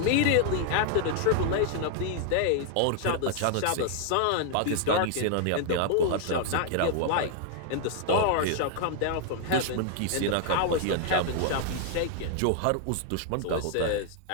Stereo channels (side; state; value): both; different; correlation 0.00